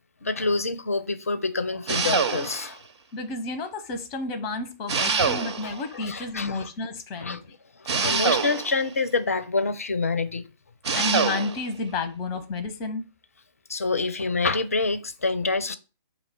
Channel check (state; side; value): inverted; both; correlation -0.39